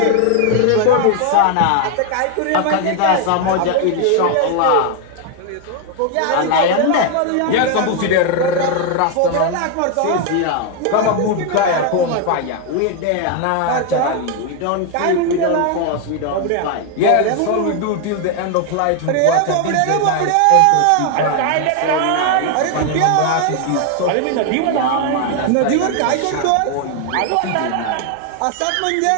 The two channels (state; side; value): different; both; correlation 0.01